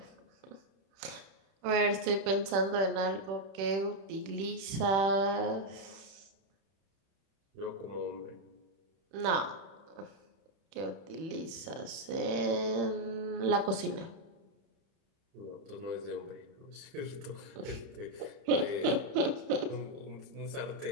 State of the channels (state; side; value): late; left; 31 ms